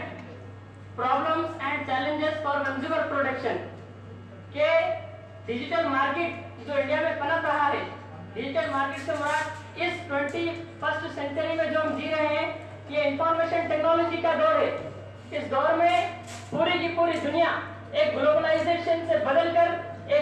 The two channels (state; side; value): identical; both; correlation 1.00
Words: problems and challenges for consumer protection के डिजिटल मार्केट जो इंडिया में पनप रहा है। डिजिटल मार्केट से मुराद इस 21st सेंचुरी में जो हम जी रहे हैं, ये इंफॉर्मेशन टेक्नोलॉजी का दौर है। इस दौर में पूरी की पूरी दुनिया एक ग्लोबलाइजेशन से बदलकर